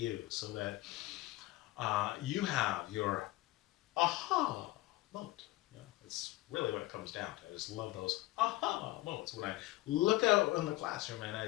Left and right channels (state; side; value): quieter; right; 18.4 dB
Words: so that you have your aha moment. You know, it's really what it comes down to. I just love those aha moments when I look out in the classroom and I